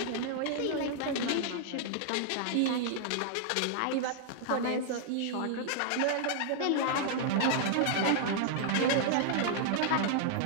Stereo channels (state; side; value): different; both; correlation -0.01